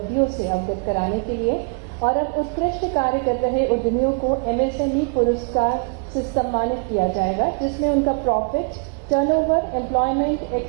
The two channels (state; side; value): quieter; left; 35.3 dB